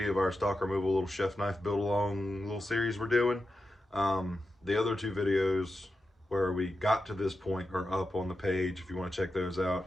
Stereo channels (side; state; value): both; normal; correlation 0.89